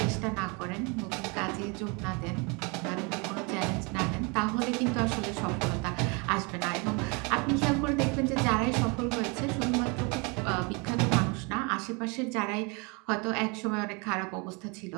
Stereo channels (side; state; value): left; quieter; 30.5 dB